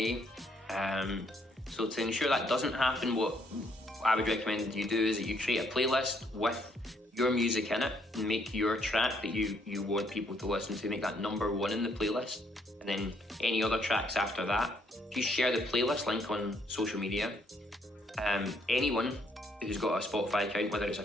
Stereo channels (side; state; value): both; normal; correlation 0.70